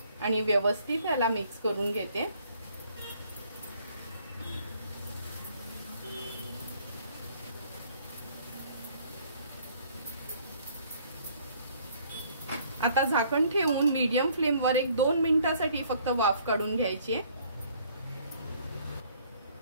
आणि व्यवस्थित याला मिक्स करून घेते। आता झाकण ठेवून मीडियम फ्लेमवर एक 2 मिनिटांसाठी फक्त वाफ काढून घ्यायची आहे।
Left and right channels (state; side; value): inverted; both; correlation -0.61